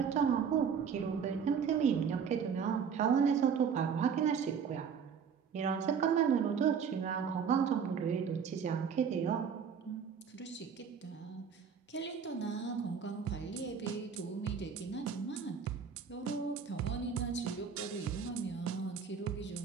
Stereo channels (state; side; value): quieter; left; 6.8 dB